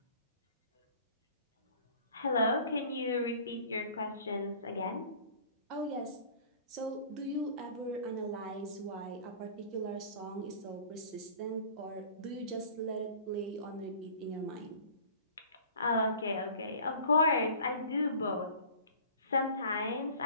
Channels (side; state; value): both; inverted; correlation -0.46